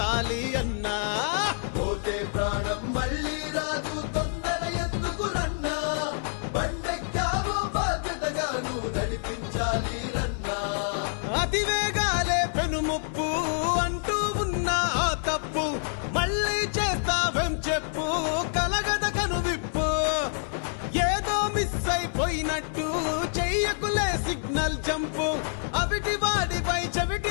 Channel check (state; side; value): silent; right; 60 dB below the other